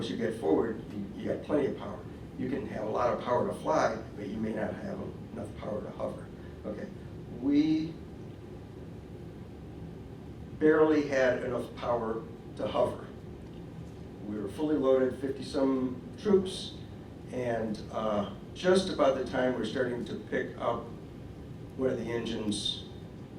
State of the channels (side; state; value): both; identical; correlation 1.00